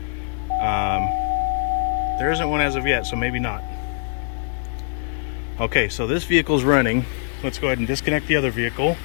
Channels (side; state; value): right; silent; 64 dB below the other